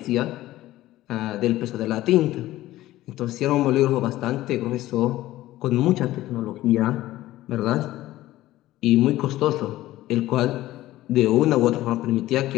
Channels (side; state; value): right; quieter; 15.7 dB